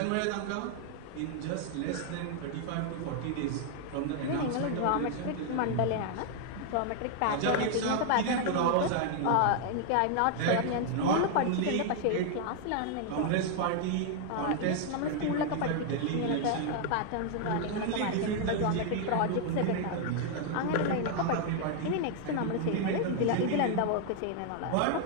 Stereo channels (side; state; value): both; different; correlation 0.00